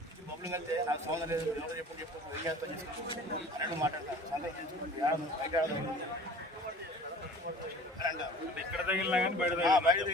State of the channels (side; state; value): both; normal; correlation 0.45